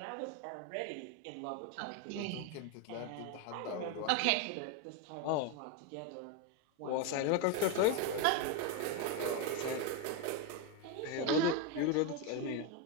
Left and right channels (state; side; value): different; both; correlation 0.02